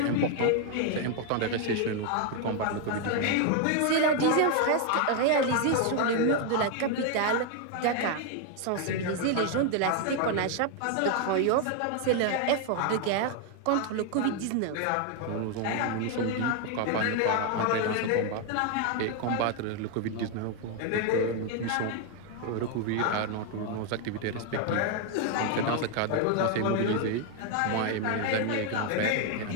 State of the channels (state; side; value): different; both; correlation 0.01